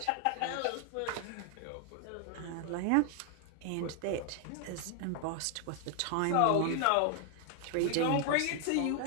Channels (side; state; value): both; different; correlation 0.00